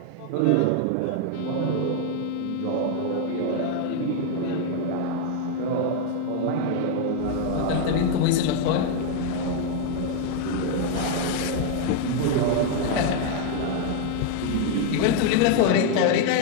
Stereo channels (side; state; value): both; different; correlation 0.00